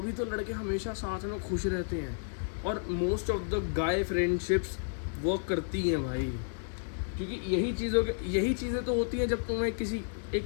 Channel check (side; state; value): right; silent; digital silence